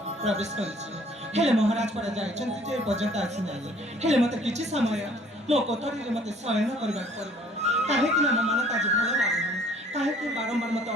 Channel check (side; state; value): both; normal; correlation 0.56